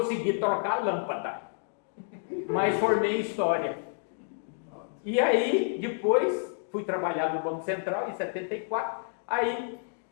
trocar a lâmpada, mas formei em História. E aí, depois, fui trabalhar no Banco Central, em 74, aí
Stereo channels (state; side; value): silent; right; digital silence